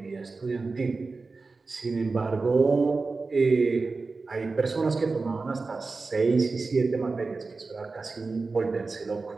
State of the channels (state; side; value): quieter; left; 4.0 dB